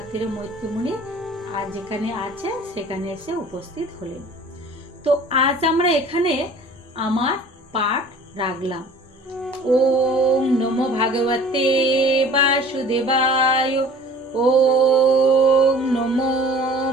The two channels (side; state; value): both; normal; correlation 0.47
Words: তীরে মৈত্রীমুনি আর যেখানে আছে সেখানে এসে উপস্থিত হলেন। তো আজ আমরা এখানে আমার পাঠ রাখলাম। ওম নমো ভগবতে বাসুদেবায়, ওম নমো